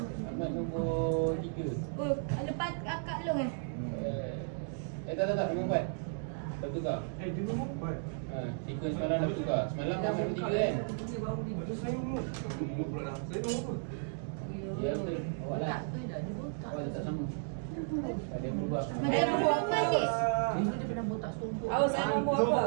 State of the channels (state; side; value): silent; left; digital silence